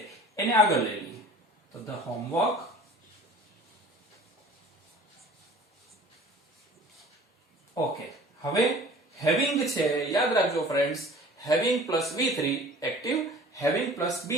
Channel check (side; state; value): both; normal; correlation 0.45